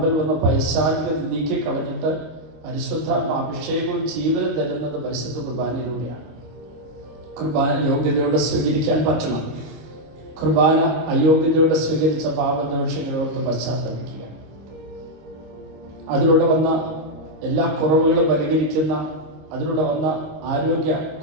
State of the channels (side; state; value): left; late; 26 ms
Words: വന്ന പൈശാചികത നീക്കിക്കളഞ്ഞിട്ട് പരിശുദ്ധ അഭിഷേകവും ജീവനും തരുന്നത് പരിശുദ്ധ കുർബാനയിലൂടെയാണ്. കുർബാന യോഗ്യതയോടെ സ്വീകരിക്കാൻ പറ്റണം. കുർബാന അയോഗ്യതയോടെ സ്വീകരിച്ച പാപദോഷങ്ങളോട് പശ്ചാത്തലിക്കുക. അതിലൂടെ വന്ന എല്ലാ കുറവുകളും പരിഹരിക്കുന്ന, അതിലൂടെ വന്ന ആരോഗ്യ